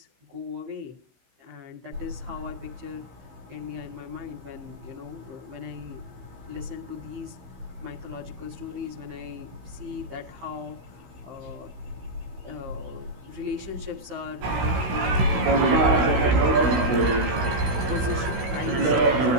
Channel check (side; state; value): left; late; 16 ms